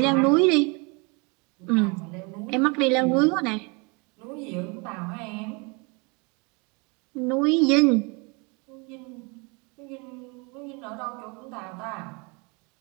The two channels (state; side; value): quieter; left; 30.7 dB